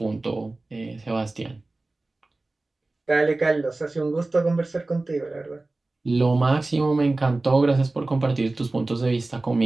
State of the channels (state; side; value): quieter; left; 3.1 dB